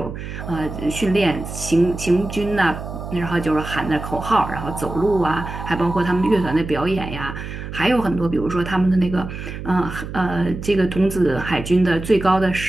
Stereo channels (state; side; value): noise; right; hum, 9 dB below the sound